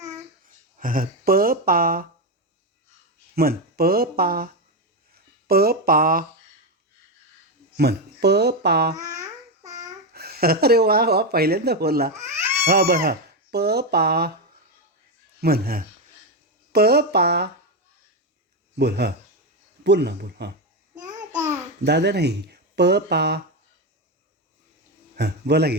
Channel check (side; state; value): both; normal; correlation 0.10